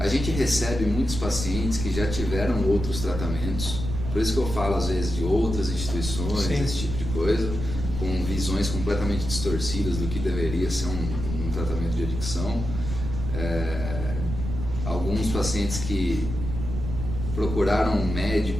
gente recebe muitos pacientes que já tiveram outros tratamentos, por isso que eu falo às vezes de outras instituições, sim, esse tipo de coisa, com visões completamente distorcidas do que deveria ser um tratamento de adicção. Alguns pacientes que procuraram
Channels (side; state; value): right; noise; rumble, 5 dB below the sound